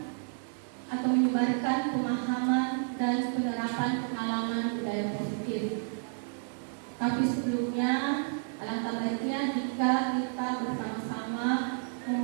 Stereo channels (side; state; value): left; silent; digital silence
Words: atau menyebarkan pemahaman dan penerapan pengalaman budaya positif. Tapi sebelumnya, alangkah baiknya jika kita bersama-sama